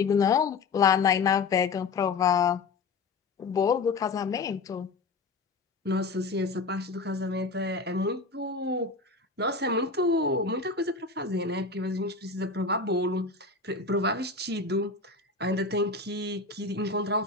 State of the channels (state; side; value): quieter; right; 4.2 dB